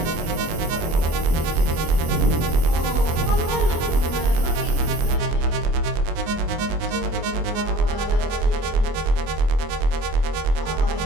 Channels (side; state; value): left; late; 24 ms